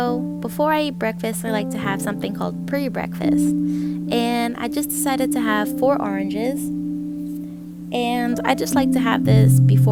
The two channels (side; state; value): both; identical; correlation 1.00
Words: before I eat breakfast, I like to have something called pre-breakfast. And I just decided to have 4 oranges. And I just like to have this